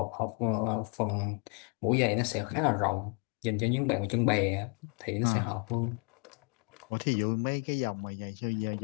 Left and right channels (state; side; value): quieter; right; 37.4 dB